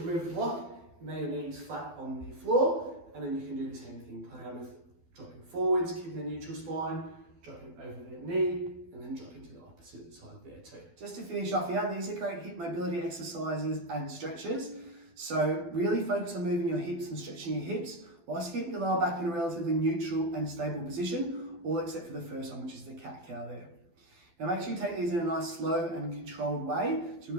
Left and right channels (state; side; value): late; left; 12 ms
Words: the block, lay your knees flat on the floor, and then you can do the same thing. Play around with dropping forwards, keeping the neutral spine, dropping over the knee, and then dropping to the opposite side there too. Just to finish off here, these are great hip mobility exercises and stretches. So really focus on moving your hips and stretching your hips, whilst keeping your lower back in a relatively neutral and stable position, all except for the first one, which is the cat-cow there. Now make sure you take these in a nice slow and controlled way to